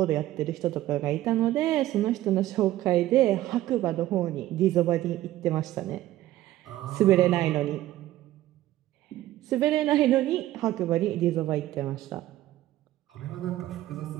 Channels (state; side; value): quieter; left; 14.7 dB